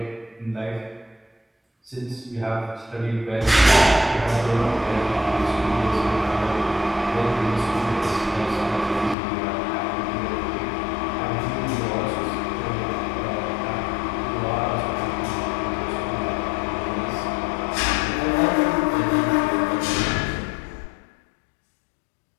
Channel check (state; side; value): drops out; right; at 9.2 s